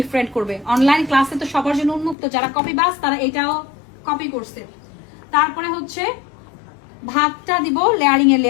করবে। অনলাইন ক্লাসে তো সবার জন্য উন্মুক্ত, যারা কপি বাস তারা এটাও কপি করছে। তারপরে হচ্ছে ভাতটা দিব লেয়ারিং এ,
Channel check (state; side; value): drops out; right; at 2.1 s